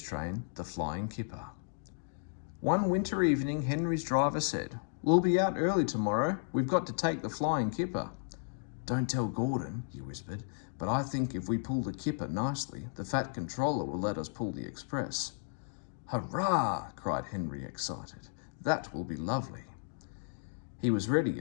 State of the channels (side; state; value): right; silent; digital silence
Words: train the Flying Kipper. One winter evening, Henry's driver said, "We'll be out early tomorrow. We've got to take the Flying Kipper." "Don't tell Gordon," he whispered, "but I think if we pull the Kipper nicely, the fat controller will let us pull the express." "Hurrah!" cried Henry, excited. "That will be lovely." He was ready